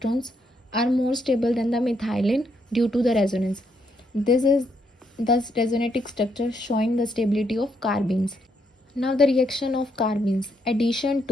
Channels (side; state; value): both; normal; correlation 0.76